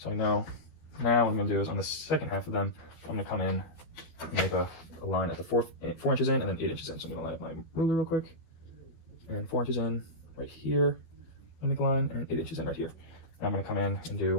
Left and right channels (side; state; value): right; late; 12 ms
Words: I know now what I'm gonna do is on the second half of them, I'm gonna come in and make a line at the 4 inches in and then 8 inches in. So I'm gonna line up my ruler real quick, and 4 inches in right here, and make a line, and 8 inches in right here. Now I'm gonna come in and do